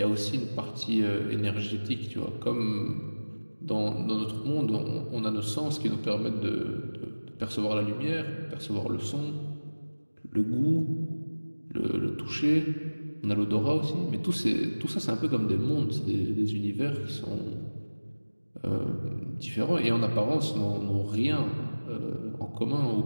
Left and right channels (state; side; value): inverted; both; correlation -1.00